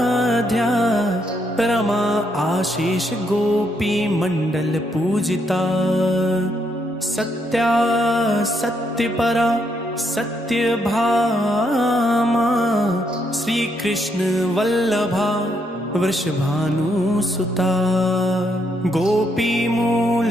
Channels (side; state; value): both; normal; correlation 0.76